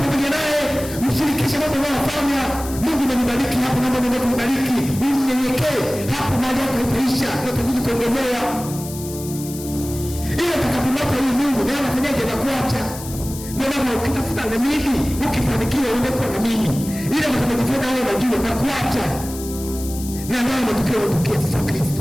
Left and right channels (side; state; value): left; noise; hiss, 13 dB below the sound